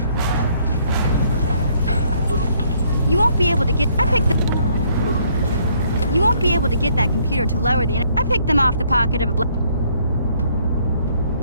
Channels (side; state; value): both; inverted; correlation -0.66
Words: You won't be able to get... You won't be able to get that computer to lower the... I picked them off the pocket of a...